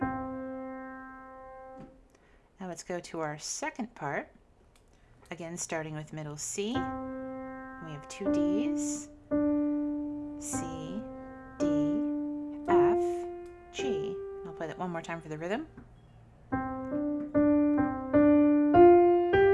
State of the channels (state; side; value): identical; both; correlation 1.00